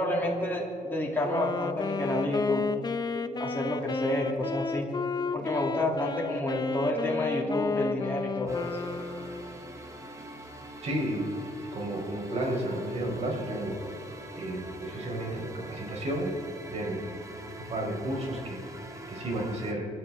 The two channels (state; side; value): normal; both; correlation 0.66